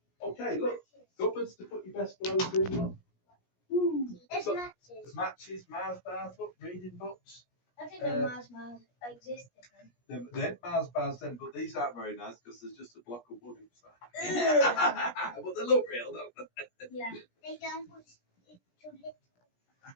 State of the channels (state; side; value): late; right; 17 ms